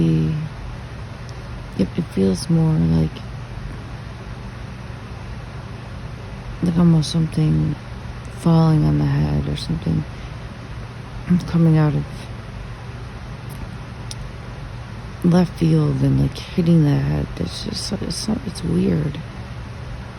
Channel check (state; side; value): identical; both; correlation 1.00